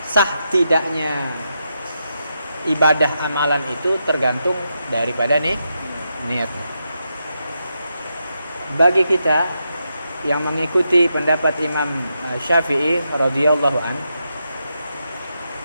Sah tidaknya ibadah amalan itu tergantung daripada niatnya. Bagi kita yang mengikuti pendapat Imam Syafi'i radhiyallahu an,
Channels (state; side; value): inverted; both; correlation -0.84